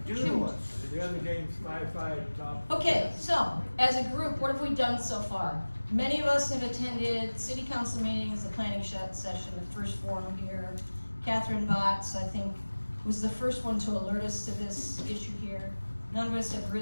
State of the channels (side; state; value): both; inverted; correlation -1.00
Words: do to us. The other game's 5-5 top. Okay, so as a group, what have we done so far? Many of us have attended city council meetings, the planning session, the first forum here. Catherine Botts, I think, was the first one to alert us to this issue here. None of us have